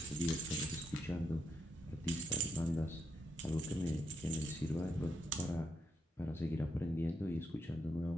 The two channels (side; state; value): both; normal; correlation 0.80